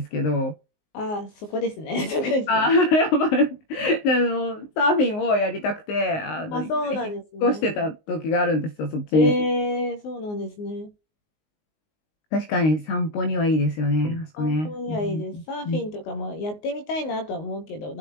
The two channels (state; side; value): late; right; 19 ms